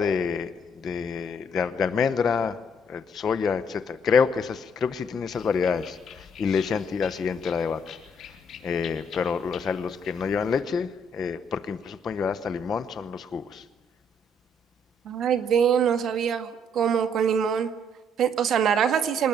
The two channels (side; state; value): both; normal; correlation 0.67